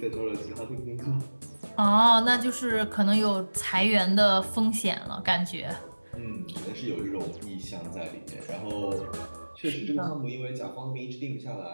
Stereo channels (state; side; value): inverted; both; correlation -1.00